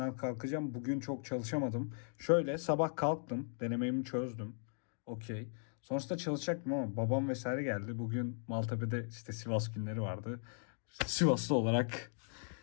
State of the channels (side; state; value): right; silent; digital silence